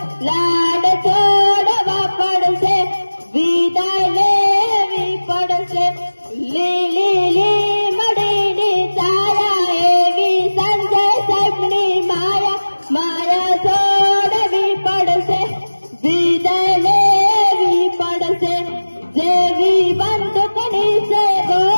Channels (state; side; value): inverted; both; correlation -1.00